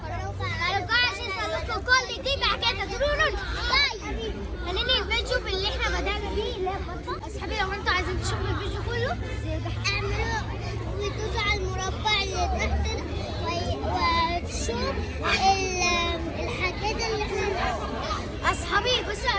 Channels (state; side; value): identical; both; correlation 1.00